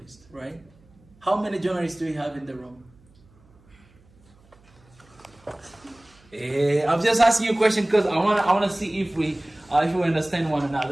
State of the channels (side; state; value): right; noise; hum, 29 dB below the sound